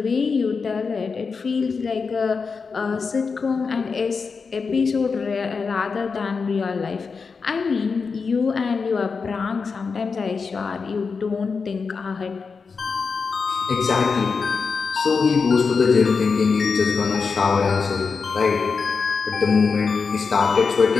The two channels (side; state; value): right; quieter; 5.0 dB